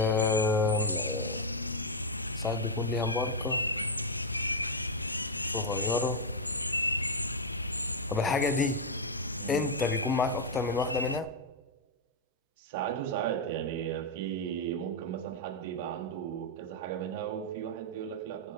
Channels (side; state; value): both; normal; correlation -0.03